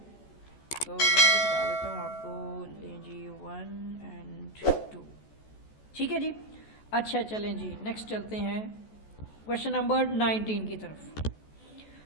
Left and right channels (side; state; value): right; late; 14 ms